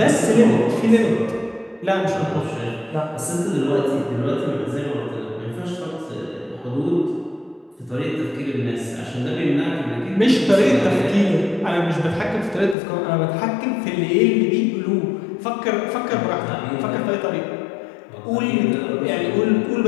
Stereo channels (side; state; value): right; drops out; at 12.8 s